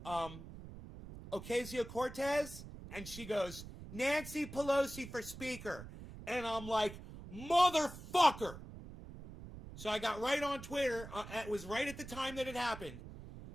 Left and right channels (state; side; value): noise; right; rumble, 13 dB below the sound